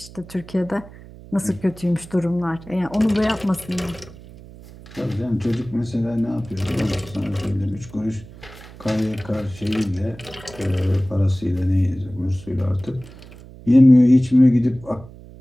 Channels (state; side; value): noise; right; hum, 19 dB below the sound